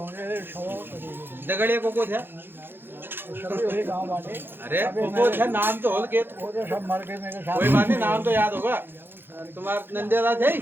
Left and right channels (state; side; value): late; left; 0.10 ms